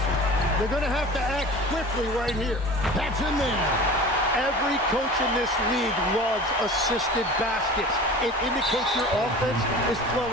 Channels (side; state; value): both; normal; correlation 0.38